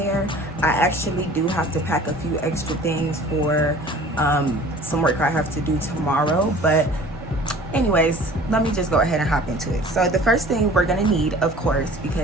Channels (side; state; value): both; normal; correlation 0.46